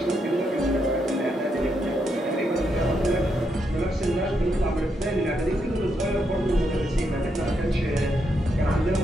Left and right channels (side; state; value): both; normal; correlation 0.80